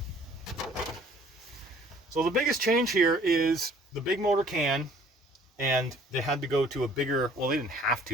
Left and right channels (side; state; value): both; normal; correlation 0.55